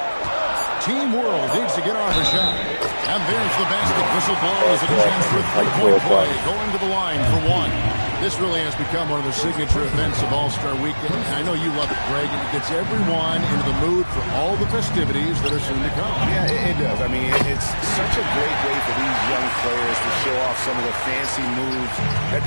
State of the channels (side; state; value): both; inverted; correlation -1.00